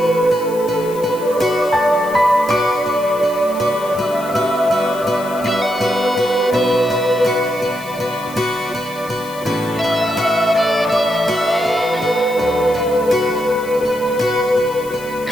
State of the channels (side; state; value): left; noise; hiss, 18 dB below the sound